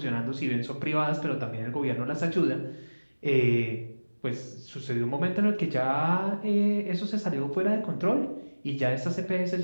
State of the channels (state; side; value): inverted; both; correlation -1.00